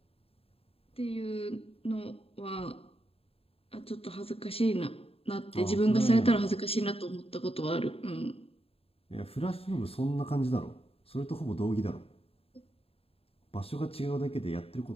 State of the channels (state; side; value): late; right; 0.28 ms